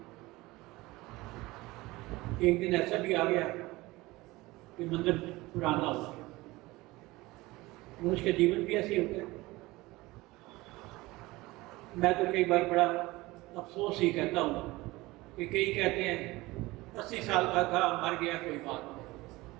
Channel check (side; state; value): left; quieter; 20.4 dB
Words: एक दिन ऐसा भी आ गया कि मंदिर पुराना हो गया। मनुष्य का जीवन भी ऐसे होता है। मैं तो कई बार बड़ा अफसोस ही कहता हूँ कि कई कहते हैं 80 साल का था, मर गया, कोई बात नहीं।